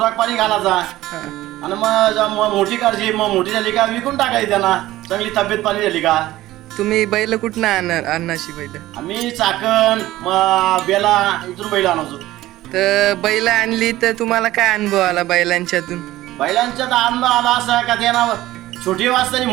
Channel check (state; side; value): quieter; left; 16.0 dB